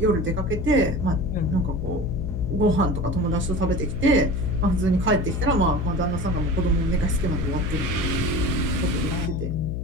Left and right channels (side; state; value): left; noise; hum, 3 dB below the sound